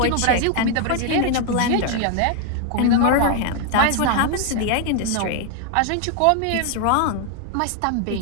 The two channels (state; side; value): different; both; correlation 0.01